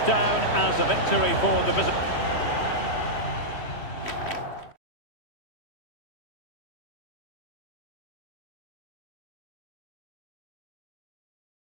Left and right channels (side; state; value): right; late; 3.1 ms